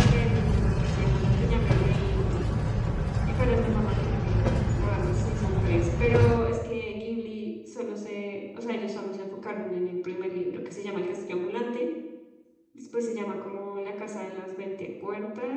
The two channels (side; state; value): both; identical; correlation 1.00